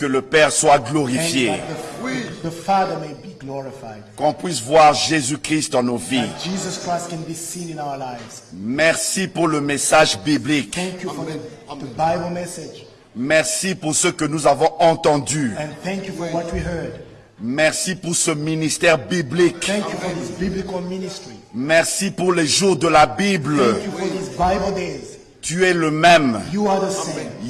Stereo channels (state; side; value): identical; both; correlation 1.00